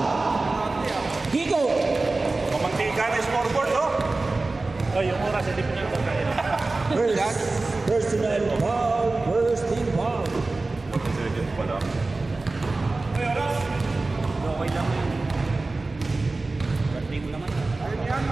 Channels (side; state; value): left; quieter; 3.4 dB